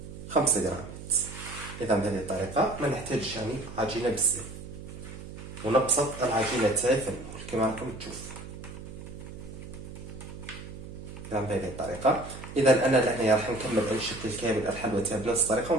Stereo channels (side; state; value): right; noise; hum, 12 dB below the sound